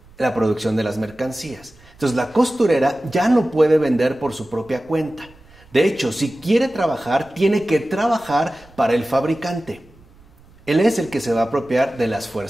la producción de las mercancías. Entonces la costurera ya no puede vender por su propia cuenta. De hecho, si quiere trabajar, tiene que trabajar para el fabricante. Él es el que se va a apropiar de las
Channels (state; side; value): noise; right; rumble, 26 dB below the sound